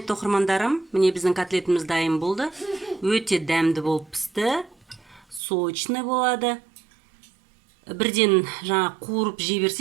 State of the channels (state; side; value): drops out; left; at 5.4 s